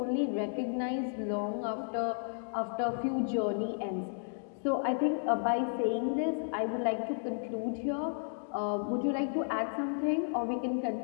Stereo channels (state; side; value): silent; right; digital silence